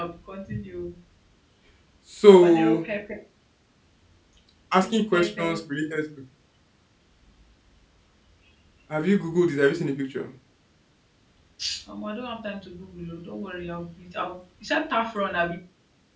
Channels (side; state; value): both; identical; correlation 1.00